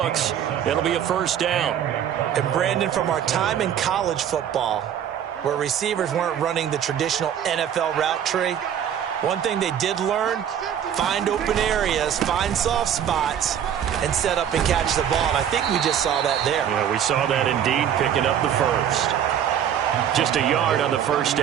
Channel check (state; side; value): quieter; left; 9.4 dB